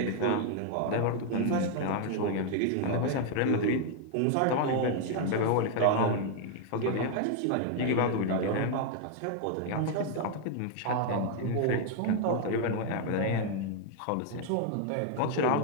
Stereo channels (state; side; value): different; both; correlation 0.00